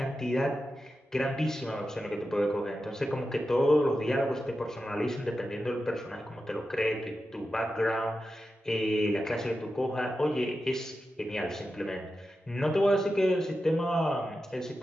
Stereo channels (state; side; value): normal; both; correlation 0.91